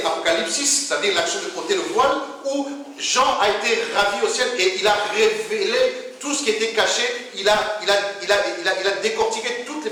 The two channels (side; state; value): both; identical; correlation 1.00